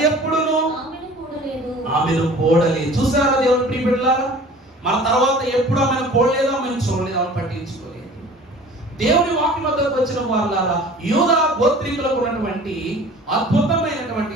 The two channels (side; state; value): both; normal; correlation 0.45